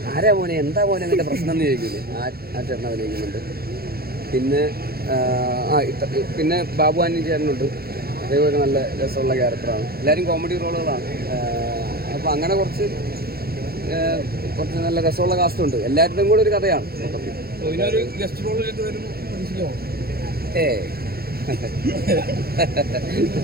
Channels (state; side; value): late; left; 0.45 ms